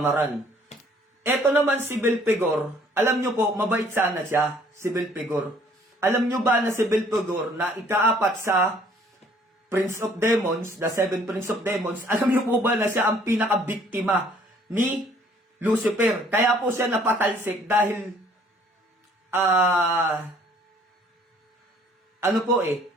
Ito naman si Belpigor, alam nyo po, mabait sana siya, si Belpigor. Alam nyo ba na si Belpigor na ika-apat sa Prince of Demons, the 7 Prince of Demons, alam nyo po ba na siya ang pinaka-biktima ni Lucifer? Kaya po siya napatalsik dahil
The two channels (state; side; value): normal; both; correlation 0.59